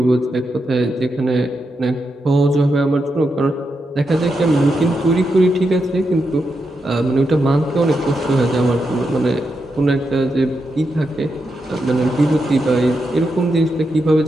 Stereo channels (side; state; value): both; normal; correlation 0.85